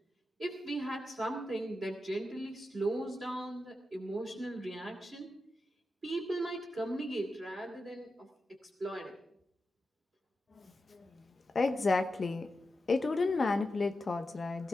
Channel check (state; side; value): normal; both; correlation 0.90